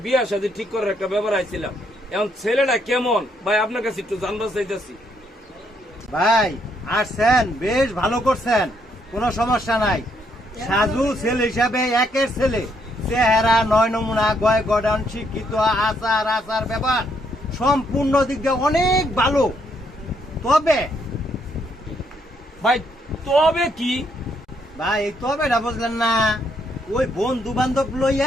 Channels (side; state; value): both; normal; correlation 0.73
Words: বিয়া শাদী ঠিক করার একটা ব্যাপার আইছিলাম। এখন ছেলেটা কেমন ভাই আপনার কাছে একটু জানবার চাইতেছি। ভাই আসছেন, বেশ ভালো করছেন, কোনো সমস্যা নাই। সাজু ছেলে হিসাবে একের ছেলে, চেহারা, নয় নমুনা, গয় গডন, শিক্ষিত, আচার আচার ব্যাপার সম্পূর্ণ দিক দিয়ে অনেক ভালো। তবে ভাই তবে কি? ভাই এই তবেটা বুঝলেন না, ওই বন্ধু বান্ধব